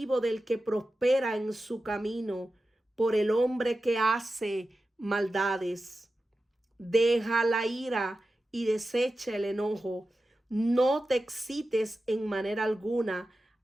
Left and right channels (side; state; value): both; normal; correlation 0.93